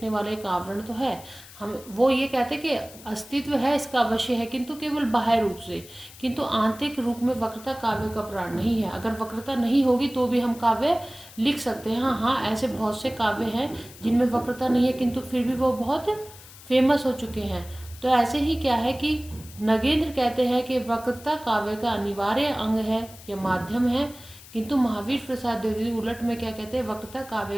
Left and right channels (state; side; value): noise; left; hiss, 19 dB below the sound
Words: वाला एक आवरण तो है, हम वो ये कहते हैं कि अस्तित्व है इसका अवश्य है, किंतु केवल बाह्य रूप से, किंतु आंतरिक रूप में वक्रता काव्य का प्राण नहीं है। अगर वक्रता नहीं होगी तो भी हम काव्य लिख सकते हैं। हाँ, ऐसे बहुत से काव्य हैं जिनमें वक्रता नहीं है किंतु फिर भी वो बहुत फेमस हो चुके हैं। तो ऐसे ही क्या है कि नगेंद्र कहते हैं कि वक्रता काव्य का अनिवार्य अंग है या माध्यम है, किंतु महावीर प्रसाद द्विवेदी उलट में क्या कहते हैं, वक्रता काव्य